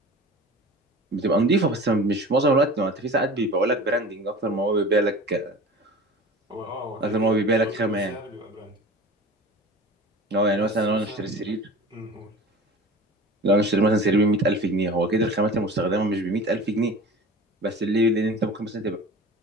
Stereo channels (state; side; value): normal; both; correlation 0.38